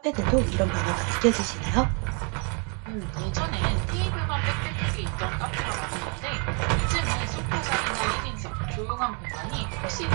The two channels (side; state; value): left; quieter; 36.1 dB